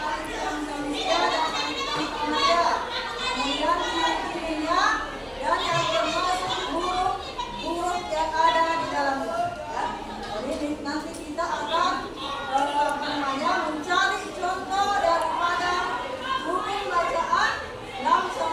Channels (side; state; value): both; identical; correlation 1.00